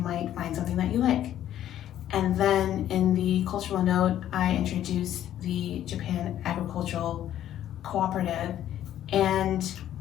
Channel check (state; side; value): quieter; right; 11.7 dB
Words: find something that you like. And then in the cultural note, I introduced the Japan Agricultural Cooperative, and